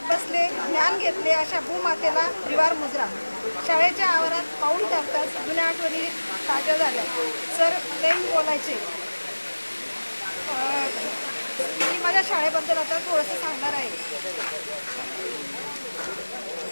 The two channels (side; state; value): both; inverted; correlation -1.00